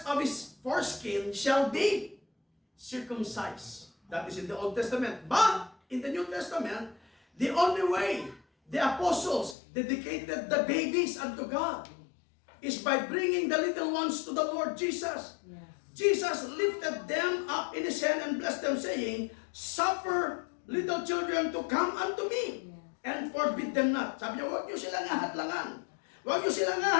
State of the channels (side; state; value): right; drops out; at 9.6 s